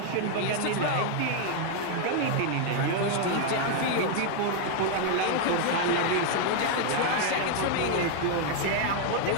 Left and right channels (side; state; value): both; different; correlation 0.00